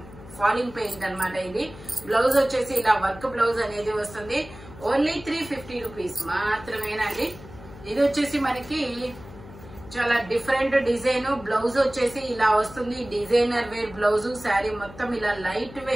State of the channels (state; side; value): noise; left; hum, 17 dB below the sound